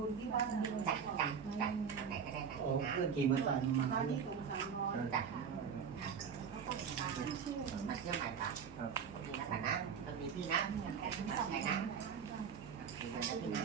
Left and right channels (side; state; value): left; quieter; 6.9 dB